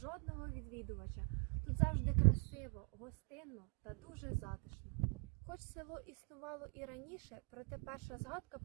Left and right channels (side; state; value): left; quieter; 38.9 dB